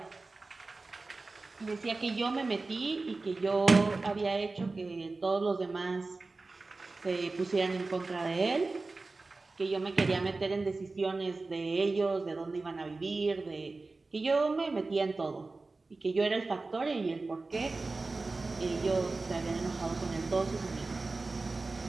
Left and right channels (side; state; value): left; quieter; 3.6 dB